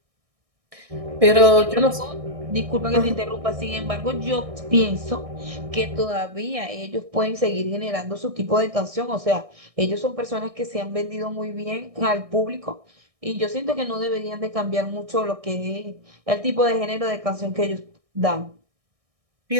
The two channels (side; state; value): left; late; 1.6 ms